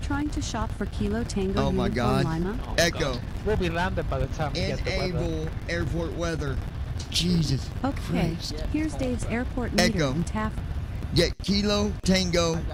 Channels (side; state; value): both; identical; correlation 1.00